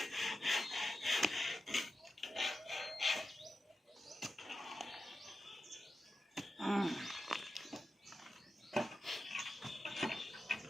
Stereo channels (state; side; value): normal; both; correlation 0.91